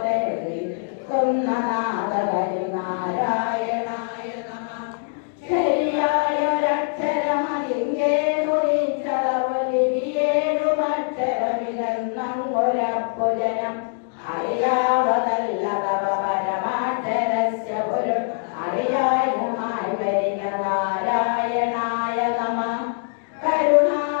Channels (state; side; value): silent; right; digital silence